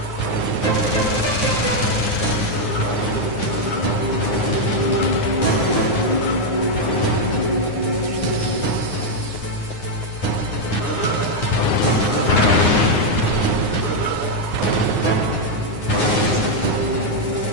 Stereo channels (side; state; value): right; late; 9.6 ms